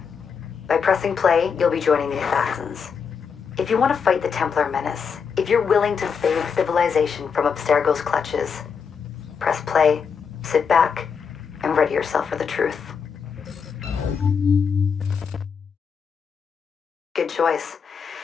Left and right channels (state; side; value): quieter; right; 6.3 dB